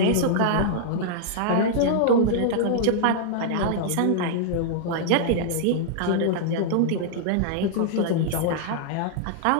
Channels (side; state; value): both; different; correlation -0.01